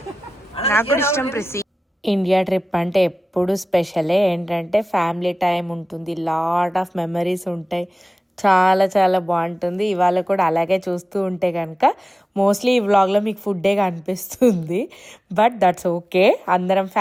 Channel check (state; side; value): normal; both; correlation 0.96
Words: నాకు కూడా ఇష్టం ప్రిసి. ఇండియా ట్రిప్ అంటే ఎప్పుడు స్పెషలే. ఏంటంటే ఫ్యామిలీ టైం ఉంటుంది, లాట్ ఆఫ్ మెమరీస్ ఉంటాయి, చాలా చాలా బాగుంటుంది. ఇవాళ కూడా అలాగే చూస్తూ ఉంటే కనుక మోస్ట్లీ ఈ వ్లాగ్లో మీకు ఫుడ్డే కనిపిస్తుంది. But that's okay. అందరం